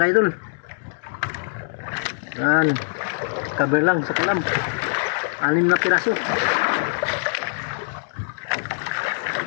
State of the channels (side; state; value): right; silent; 63 dB below the other